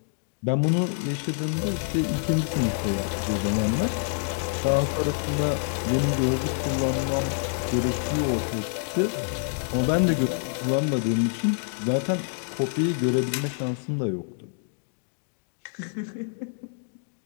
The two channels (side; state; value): right; silent; digital silence